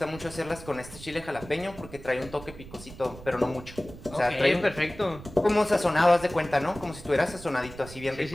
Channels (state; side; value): noise; right; rumble, 16 dB below the sound